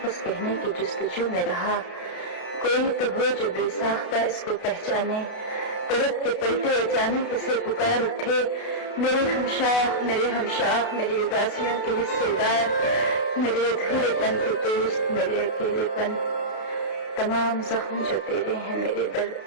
کہنے کی جستجو میں رہا، کوئی تو ہو جو بے ساختہ اس کو پہچانے، تڑپ کے پلٹے اچانک اسے پکار اٹھے، میرے ہمشاہ، میری اداسیوں کے حصے دار، میرے ادھورے پن کے دوست، میرے اکیلے پن، تمام زخم جو تیرے ہیں، میرے درد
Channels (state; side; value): late; right; 32 ms